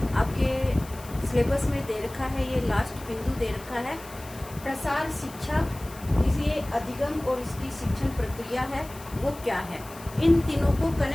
आपके सिलेबस में दे रखा है, ये लास्ट बिंदु दे रखा है। प्रसार शिक्षा ये अधिगम और इसकी शिक्षण प्रक्रिया है, वो क्या है। इन तीनों को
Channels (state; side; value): noise; left; hiss, 18 dB below the sound